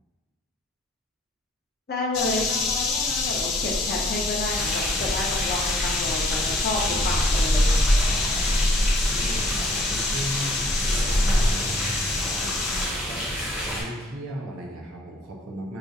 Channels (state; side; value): normal; both; correlation 0.58